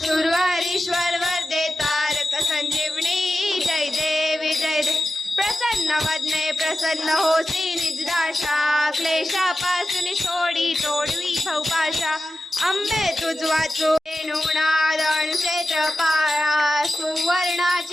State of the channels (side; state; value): both; normal; correlation 0.92